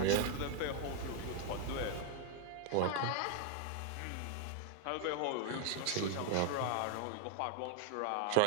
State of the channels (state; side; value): different; both; correlation 0.00